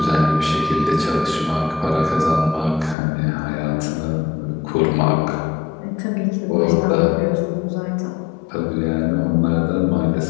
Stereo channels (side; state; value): right; drops out; at 3.0 s